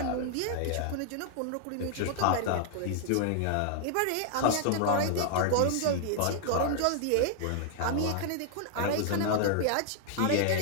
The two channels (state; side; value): different; both; correlation 0.00